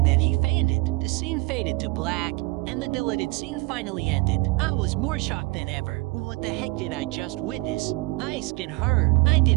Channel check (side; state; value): left; quieter; 24.0 dB